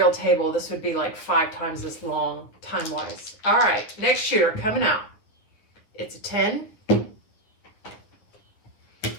table, this would be like 5 times this long time-wise. All right, next shooter coming out. It's a 10.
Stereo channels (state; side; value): late; right; 9.5 ms